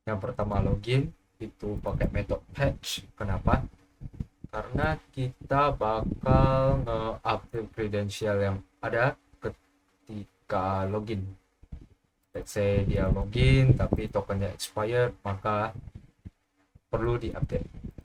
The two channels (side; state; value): both; identical; correlation 1.00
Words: Yang pertama login itu pakai metode patch. Kenapa? Karena kita bakal nge-update credential yang ada ketika login. Let's say dia login tapi tokennya expired, maka perlu diupdate.